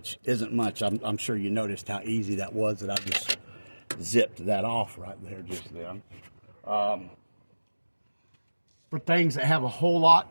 isn't much. I'm sure you noticed how easy that was, that I just zipped that off right there just then. For things that have a whole lot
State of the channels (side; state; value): both; inverted; correlation -1.00